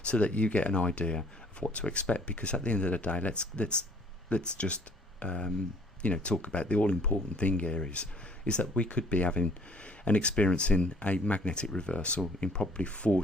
so that you get an idea of what to expect. Because at the end of the day, let's just talk about the all-important thing here is that we could be having and experiencing a magnetic reversal in probably 4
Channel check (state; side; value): normal; both; correlation 0.57